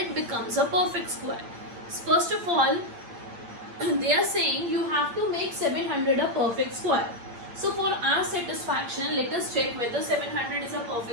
becomes a perfect square. First of all, they are saying you have to make 700 a perfect square. So for our satisfaction, let us check whether 700 is a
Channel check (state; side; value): late; left; 8.4 ms